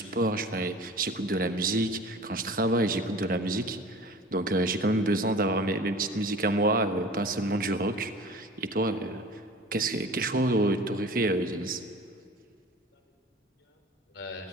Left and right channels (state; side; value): normal; both; correlation 0.41